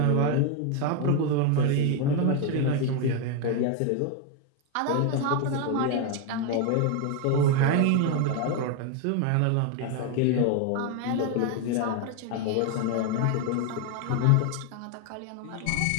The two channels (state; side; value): different; both; correlation 0.01